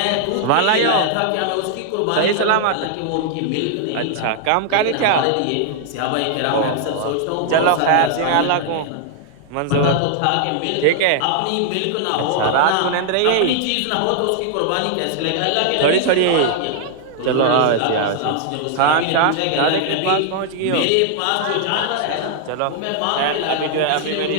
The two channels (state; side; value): different; both; correlation 0.00